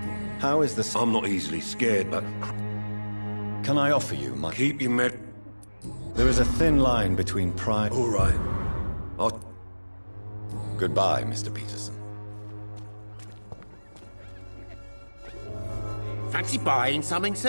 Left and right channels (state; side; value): inverted; both; correlation -1.00